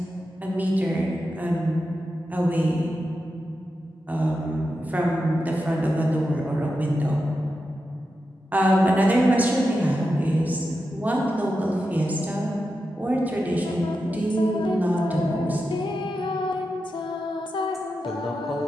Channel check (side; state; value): both; normal; correlation 0.89